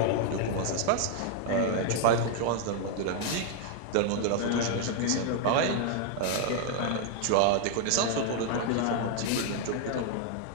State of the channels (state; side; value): different; both; correlation 0.00